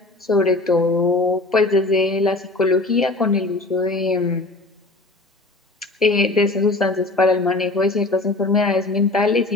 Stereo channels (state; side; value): quieter; right; 3.0 dB